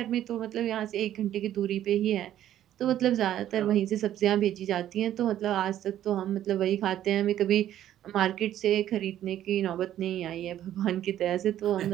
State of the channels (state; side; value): quieter; left; 11.9 dB